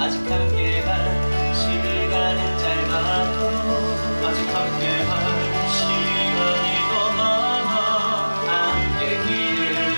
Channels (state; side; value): inverted; both; correlation -1.00